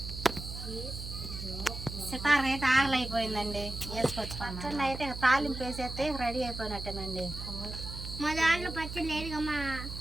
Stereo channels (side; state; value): right; noise; hum, 8 dB below the sound